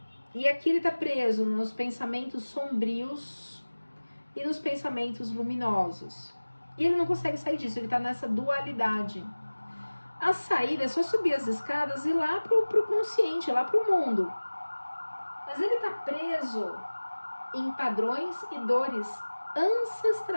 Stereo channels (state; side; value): inverted; both; correlation -1.00